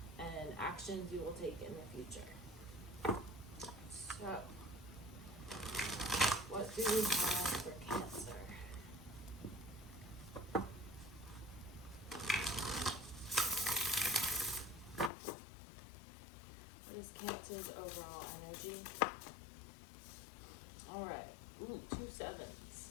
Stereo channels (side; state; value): right; drops out; at 15.1 s